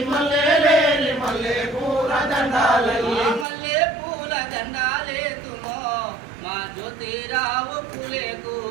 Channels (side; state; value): left; drops out; at 3.5 s